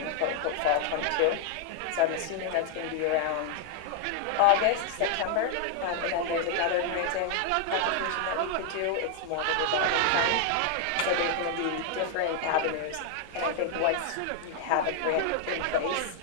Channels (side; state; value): both; different; correlation 0.00